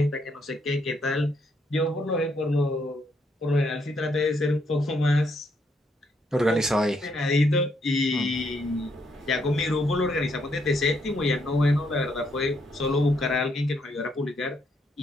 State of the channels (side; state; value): both; normal; correlation 0.74